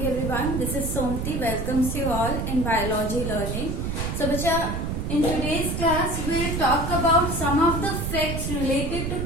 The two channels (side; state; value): right; noise; rumble, 2 dB below the sound